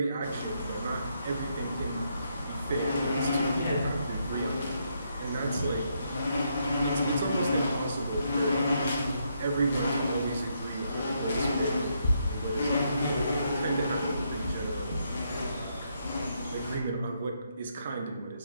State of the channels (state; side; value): inverted; both; correlation -0.77